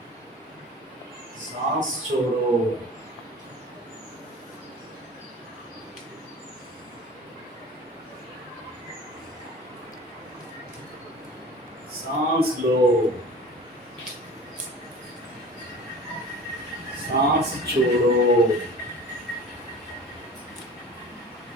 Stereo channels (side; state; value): both; normal; correlation 0.40